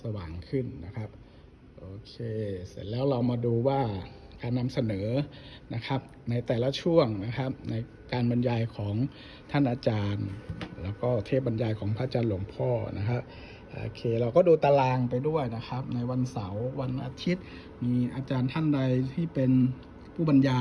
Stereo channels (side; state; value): both; identical; correlation 1.00